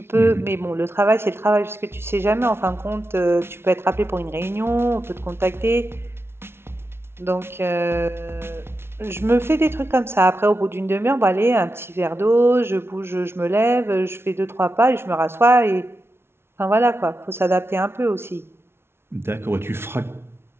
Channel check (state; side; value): late; left; 0.12 ms